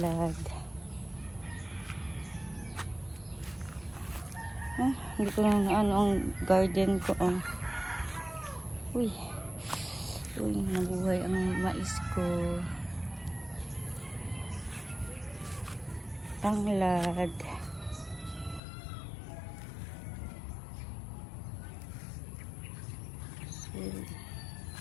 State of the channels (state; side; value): drops out; right; at 18.6 s